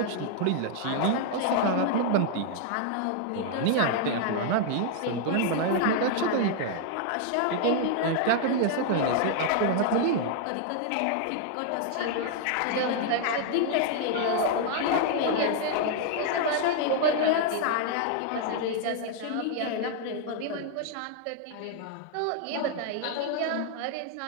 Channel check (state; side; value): different; both; correlation 0.00